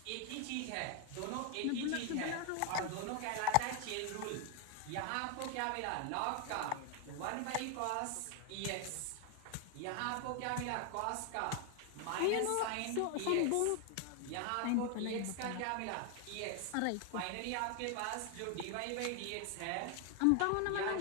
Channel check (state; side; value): different; both; correlation 0.01